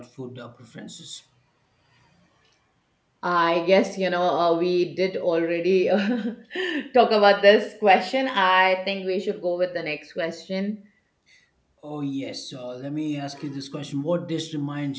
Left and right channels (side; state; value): both; identical; correlation 1.00